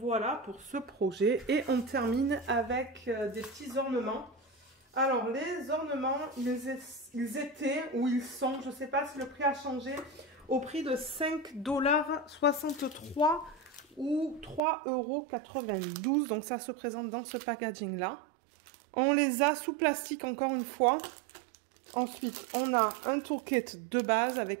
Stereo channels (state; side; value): drops out; left; at 14.6 s